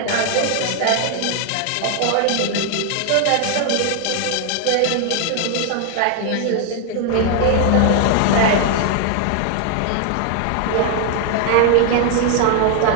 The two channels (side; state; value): both; different; correlation 0.00